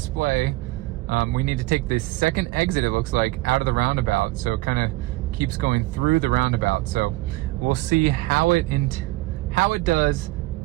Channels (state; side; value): quieter; left; 19.7 dB